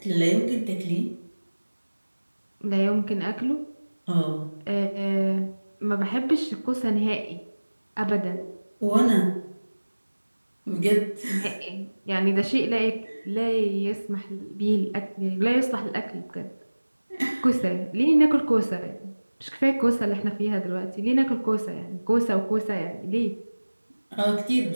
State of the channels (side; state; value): both; inverted; correlation -1.00